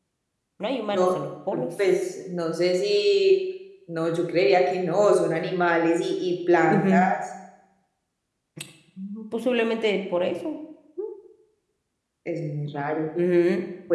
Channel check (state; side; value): identical; both; correlation 1.00